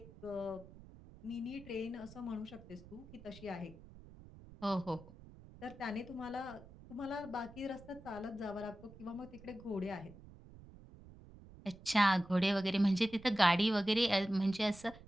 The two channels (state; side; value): noise; right; rumble, 19 dB below the sound